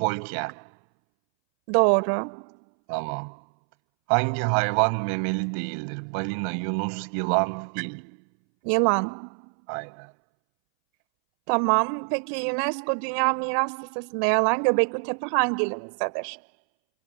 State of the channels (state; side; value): silent; left; 61 dB below the other